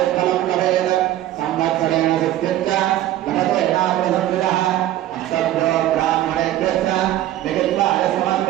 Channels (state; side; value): quieter; left; 13.6 dB